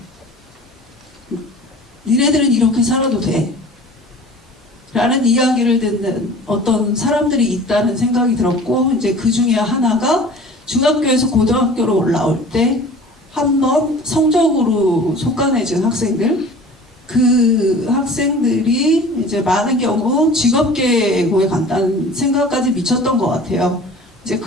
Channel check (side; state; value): both; normal; correlation 0.43